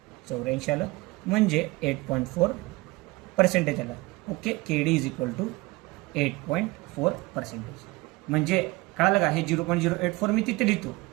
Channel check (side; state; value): left; quieter; 22.3 dB